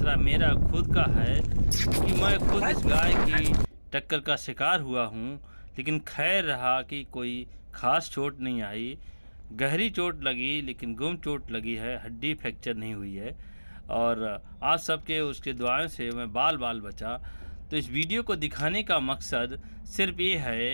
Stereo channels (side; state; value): both; inverted; correlation -1.00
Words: मेरा खुद का है कि मैं खुद इस गाय की टक्कर का शिकार हुआ हूँ। लेकिन खैर रहा कि कोई ख़ास चोट नहीं आई। गहरी चोट लगी लेकिन गुम चोट लगी है, हड्डी फ्रैक्चर नहीं हुई है। और आप सबके उसके दुआओं से मैं बाल बचा। तो इस वीडियो को दिखाने का मकसद सिर्फ ये